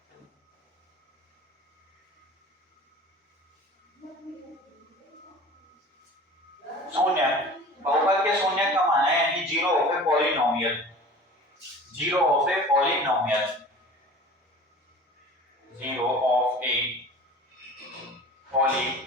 शून्य, बहुपद के शून्य का माना है कि zero of a polynomial, zero of a polynomial, zero of a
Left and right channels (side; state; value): both; normal; correlation 0.40